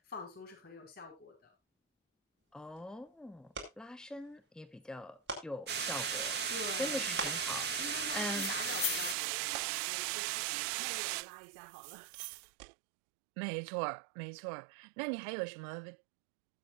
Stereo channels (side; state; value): left; drops out; at 9.2 s